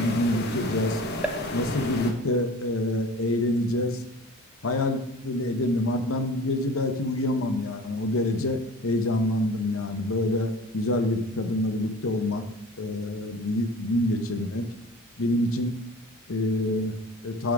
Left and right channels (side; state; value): both; normal; correlation 0.41